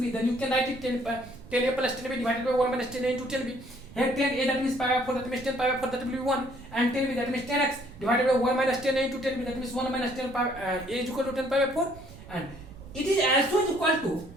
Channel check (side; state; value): right; noise; rumble, 18 dB below the sound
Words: then you can write it 10a plus 10b divided by 1 minus 10a into 10b. Here 10a, that means pi by 4, that means 10 pi by 4, that will be 1, and 10b, that means 10x divided by 1 minus 10a into 10b, that means 1 minus 10 pi, a is equal to 10 pi by 4, and it is also equal to